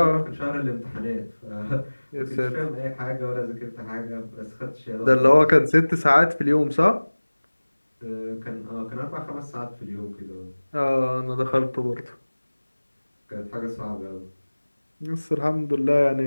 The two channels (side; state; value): both; inverted; correlation -1.00